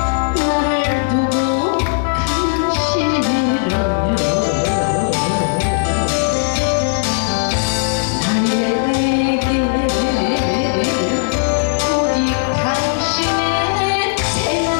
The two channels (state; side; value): silent; right; 65 dB below the other